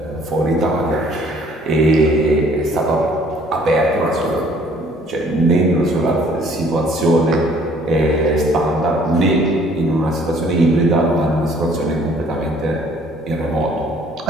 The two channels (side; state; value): both; normal; correlation 0.58